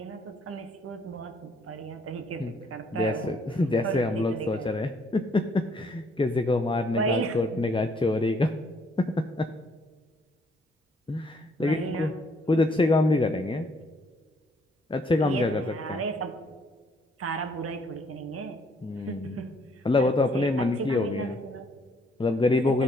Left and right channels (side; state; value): both; normal; correlation 0.66